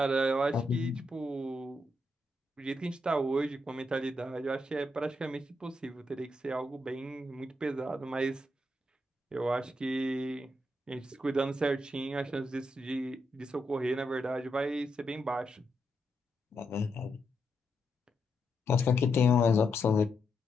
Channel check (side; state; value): both; normal; correlation 0.82